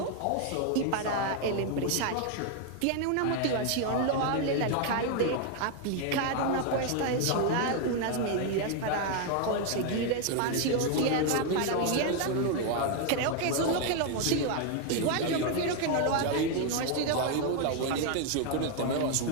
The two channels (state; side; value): different; both; correlation 0.01